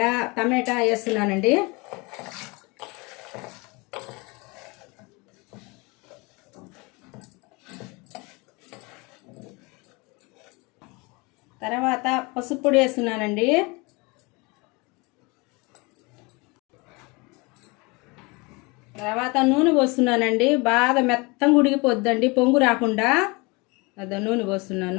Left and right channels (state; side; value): quieter; right; 26.8 dB